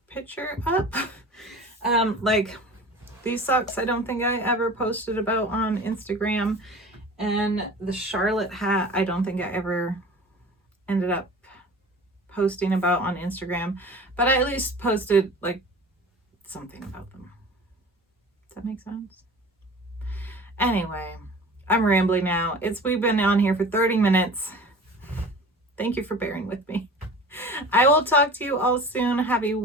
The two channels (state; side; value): normal; both; correlation 0.40